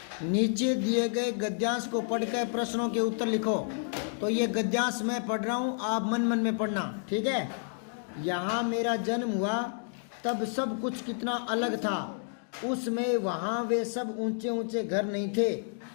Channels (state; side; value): silent; right; 58 dB below the other